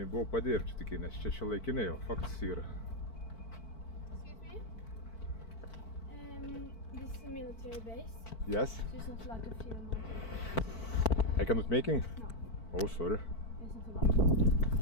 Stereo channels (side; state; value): right; late; 4.5 ms